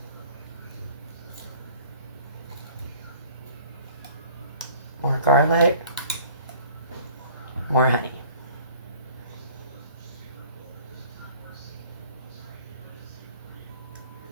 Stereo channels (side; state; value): both; inverted; correlation -0.51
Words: More garlic. More honey.